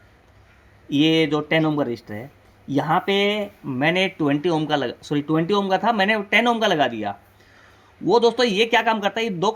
ये जो 10 ओम का रजिस्टर है, यहाँ पे मैंने 20 ओम का 20 ओम का था, मैंने 10 ओम का लगा दिया। वो दोस्तों ये क्या काम करता है, ये 2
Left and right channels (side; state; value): both; identical; correlation 1.00